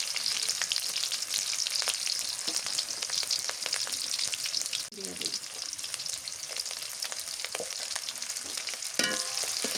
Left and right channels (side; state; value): both; identical; correlation 1.00